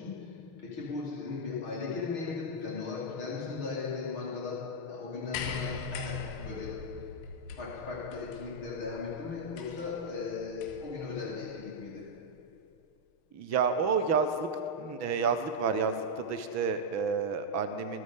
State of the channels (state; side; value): late; right; 6.1 ms